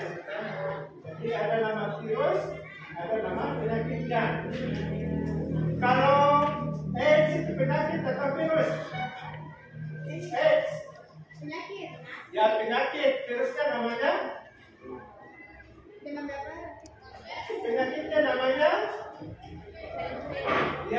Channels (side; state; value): both; identical; correlation 1.00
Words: Jadi ada nama virus, ada nama penyakitnya. Kalau AIDS itu penyakit atau virus? AIDS. Penyakit. Ya penyakit, virusnya namanya? Penyakitnya namanya?